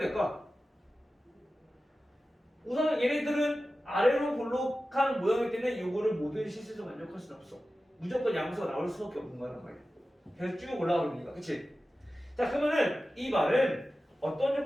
우선 얘네들은 아래로 볼록한 모양일 때는 이거를 모든 실수에서 만족할 수는 없어. 무조건 양수가 나올 수밖에 없는 거란 말이야. 계속 쭉 올라가니까. 그치? 자 그러면은 이 말은 어떤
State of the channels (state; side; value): normal; both; correlation 0.94